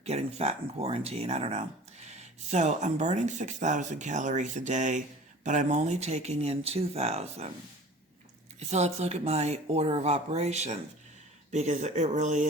getting fat in quarantine. I don't know. So I'm burning 6,000 calories a day, but I'm only taking in 2,000. So let's look at my order of operations, because it really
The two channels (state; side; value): normal; both; correlation 0.43